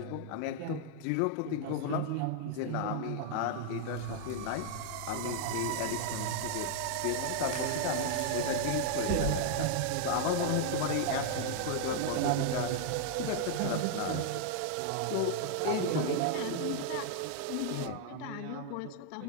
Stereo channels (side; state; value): both; different; correlation 0.00